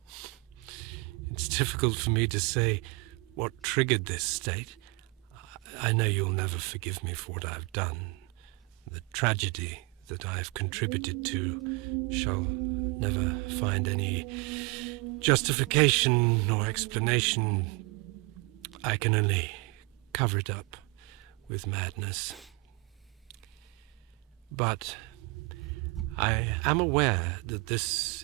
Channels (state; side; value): quieter; left; 26.7 dB